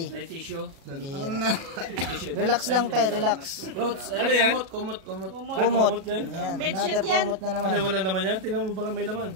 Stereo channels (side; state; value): left; late; 37 ms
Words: May tissue. Relax lang, tay, relax. Clothes. Ano yan? Kumot. Kumot. yan? Yan, Bedsheet another yan. kumot na naman. Ano, wala naman yan? Tingnan mo baka may laman.